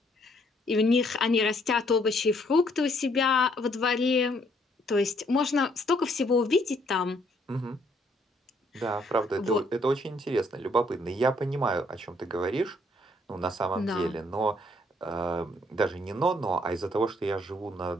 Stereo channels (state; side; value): normal; both; correlation 0.68